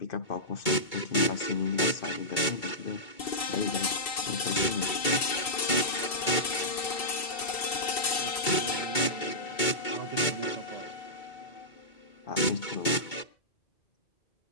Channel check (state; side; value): late; right; 2.2 ms